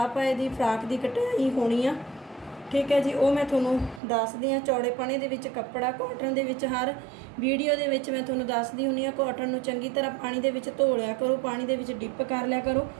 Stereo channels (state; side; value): drops out; left; at 4.0 s